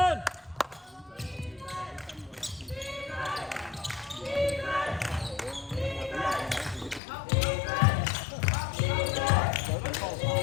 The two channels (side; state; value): right; drops out; at 7.0 s